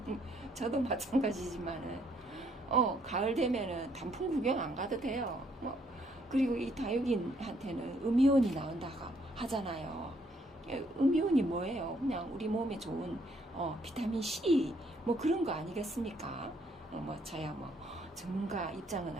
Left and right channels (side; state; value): both; normal; correlation 0.68